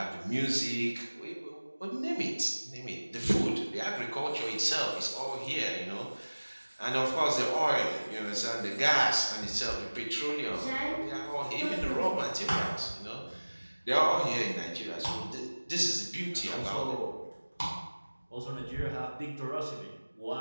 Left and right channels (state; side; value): inverted; both; correlation -1.00